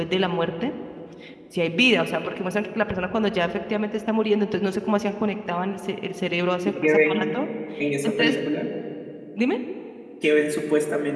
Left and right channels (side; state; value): both; identical; correlation 1.00